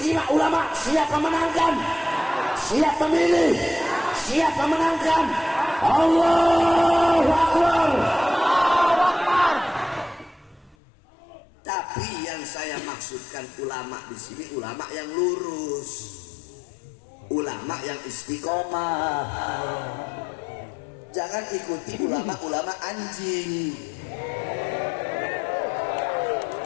ulama? Siap memenangkan? Siap memilih? Siap memenangkan? Allahu Akbar. Tapi yang saya maksudkan ulama di sini ulama yang lurus, ulama yang istiqomah. Jangan ikuti ulama-ulama anjing.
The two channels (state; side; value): drops out; right; at 10.8 s